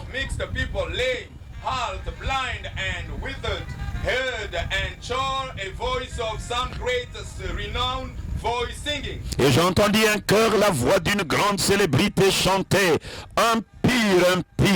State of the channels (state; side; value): identical; both; correlation 1.00